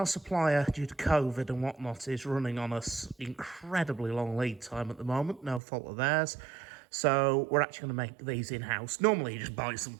supplier, due to COVID and whatnot, is running on us incredibly long lead time at the moment. No fault of theirs. So we're actually going to make these in-house. Normally, you just buy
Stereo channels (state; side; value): drops out; left; at 5.6 s